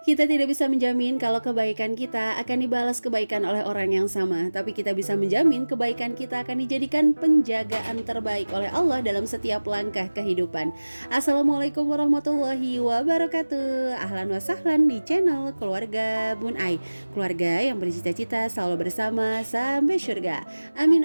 Kita tidak bisa menjamin kalau kebaikan kita akan dibalas kebaikan oleh orang yang sama, tapi kita bisa menjamin kebaikan kita akan dijadikan penjagaan terbaik oleh Allah dalam setiap langkah kehidupan. Assalamualaikum warahmatullahi wabarakatuh. Ahlan wa sahlan di channel Keluarga Bun Ai. Keluarga yang bercita-cita selalu bersama sampai surga. Amin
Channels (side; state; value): both; inverted; correlation -1.00